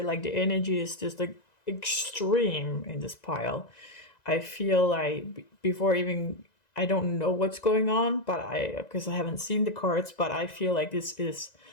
Like the energy is just like extreme in this pile. I feel like before even, I don't know what's going on, but because I haven't seen the cards, but I feel like this is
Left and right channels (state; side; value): late; right; 1.9 ms